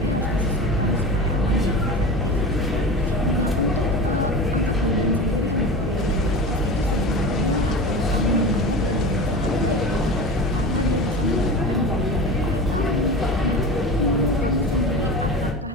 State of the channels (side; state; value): both; normal; correlation 0.30